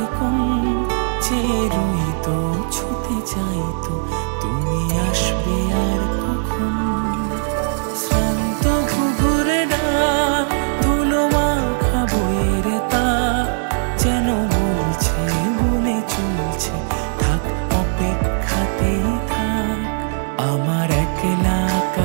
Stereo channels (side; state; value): left; silent; digital silence